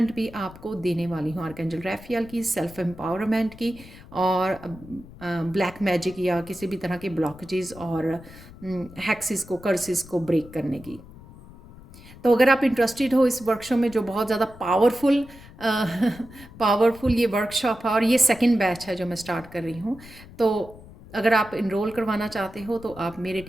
भी आपको देने वाली हूँ, आर्कएंजल रैफियल की, सेल्फ एम्पावरमेंट की, और ब्लैक मैजिक या किसी भी तरह के ब्लॉकेजेस और हैक्सेस को, कर्सेस को ब्रेक करने की। तो अगर आप इंटरेस्टेड हो इस वर्कशॉप में, जो बहुत ज़्यादा पावरफुल ये वर्कशॉप है, और ये सेकंड बैच है जो मैं स्टार्ट कर रही हूँ, तो अगर आप इनरोल करवाना चाहते हो तो आप मेरे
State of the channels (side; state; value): left; noise; rumble, 19 dB below the sound